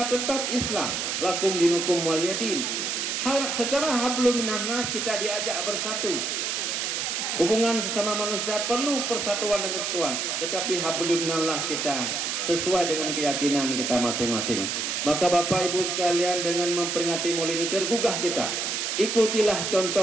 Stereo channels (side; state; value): right; noise; hiss, 1 dB below the sound